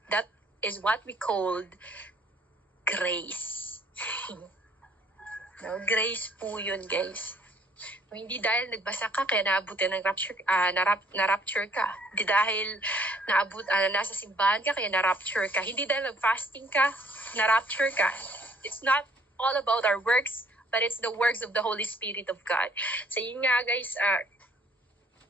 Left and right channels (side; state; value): both; normal; correlation 0.61